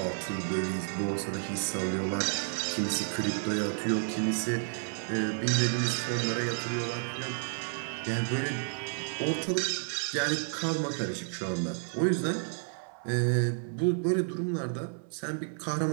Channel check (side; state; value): left; silent; 57 dB below the other